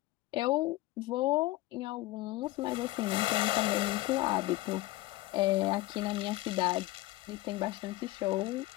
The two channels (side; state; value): right; quieter; 18.3 dB